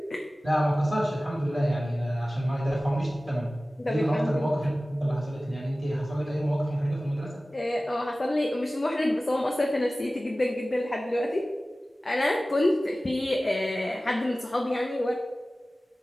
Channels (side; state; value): both; normal; correlation 0.97